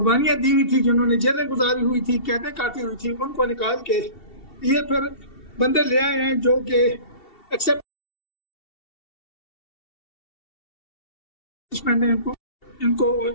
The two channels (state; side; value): late; right; 2.7 ms